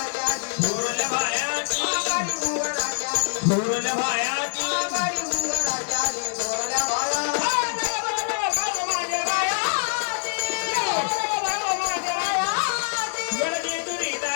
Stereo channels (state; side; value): silent; right; digital silence